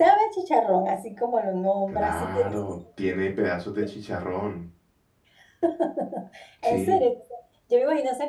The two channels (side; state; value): both; identical; correlation 1.00